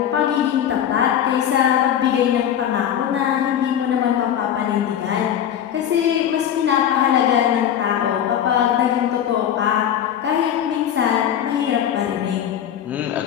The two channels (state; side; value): quieter; right; 9.8 dB